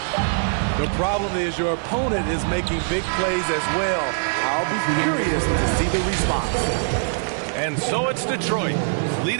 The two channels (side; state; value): left; silent; digital silence